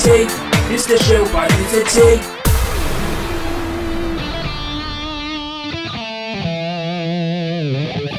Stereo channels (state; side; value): identical; both; correlation 1.00